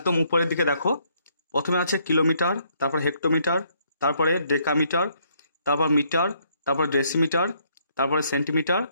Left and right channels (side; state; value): both; inverted; correlation -0.70